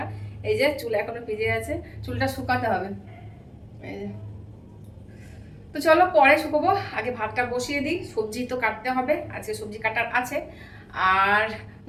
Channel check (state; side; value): identical; both; correlation 1.00